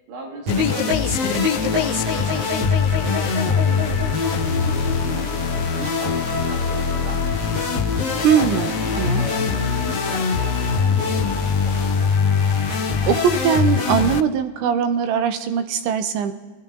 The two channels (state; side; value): late; left; 19 ms